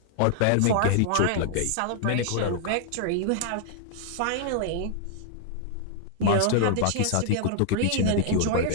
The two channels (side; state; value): both; different; correlation -0.01